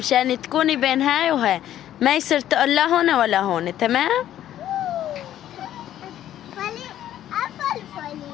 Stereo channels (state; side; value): quieter; right; 11.9 dB